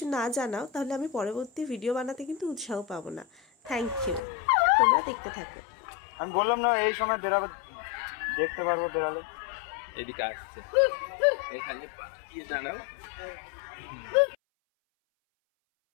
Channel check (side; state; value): right; drops out; at 4.2 s